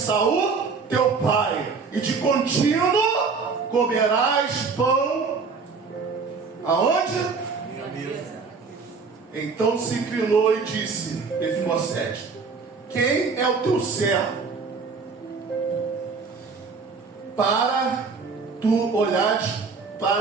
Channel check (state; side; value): quieter; left; 4.9 dB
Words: teu pai, e de contínuo comerás pão. Aonde? Minha mesa. Então se inclinou e disse: Mefibosete, quem é o teu servo para tu olhares